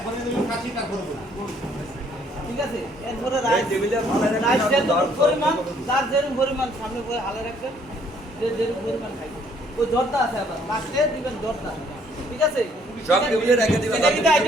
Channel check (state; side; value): normal; both; correlation 0.64